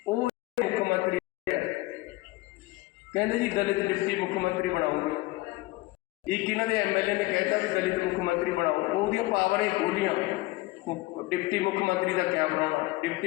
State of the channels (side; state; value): right; quieter; 20.2 dB